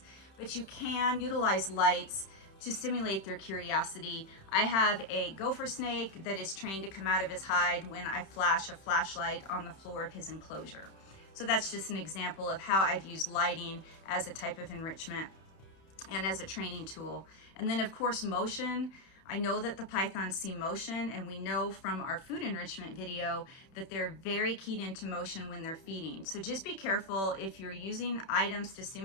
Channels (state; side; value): late; right; 31 ms